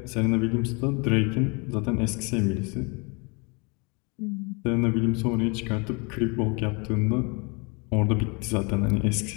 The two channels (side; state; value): right; quieter; 31.2 dB